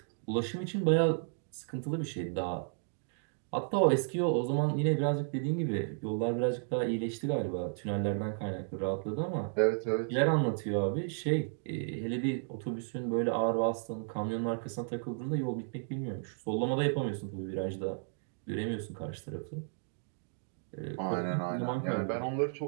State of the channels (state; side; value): silent; left; digital silence